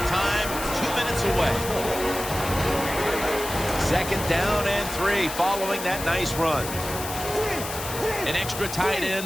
2 minutes away. 2nd down and 3 following that nice run. An extra tight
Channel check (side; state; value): left; noise; hiss, 8 dB below the sound